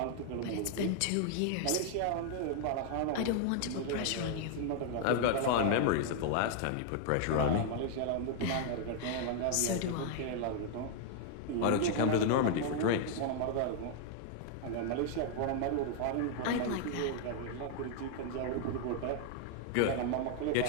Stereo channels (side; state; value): both; different; correlation 0.00